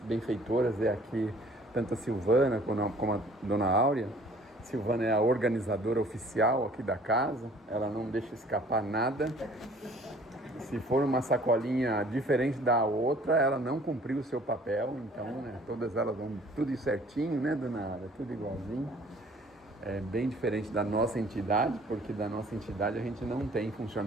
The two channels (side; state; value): both; normal; correlation 0.54